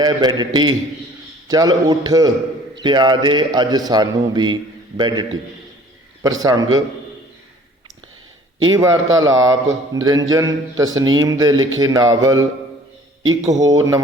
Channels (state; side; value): normal; both; correlation 0.52